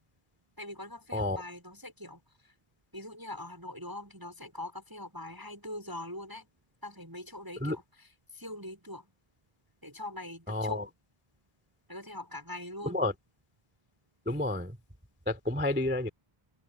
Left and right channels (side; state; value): left; late; 1.0 ms